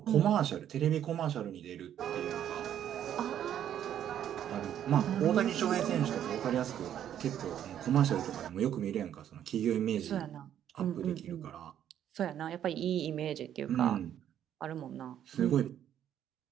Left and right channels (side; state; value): left; quieter; 10.3 dB